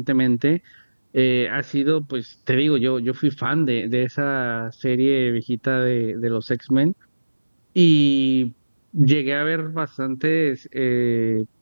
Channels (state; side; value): inverted; both; correlation -1.00